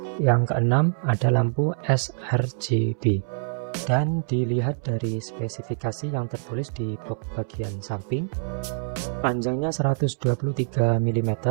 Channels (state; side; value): silent; left; 62 dB below the other